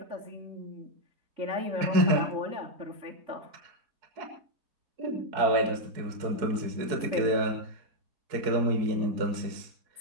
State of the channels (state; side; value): late; left; 4.6 ms